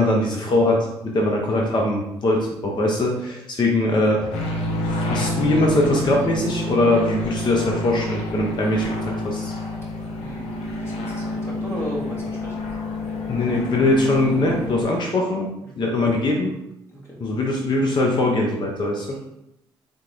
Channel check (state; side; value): normal; both; correlation 0.57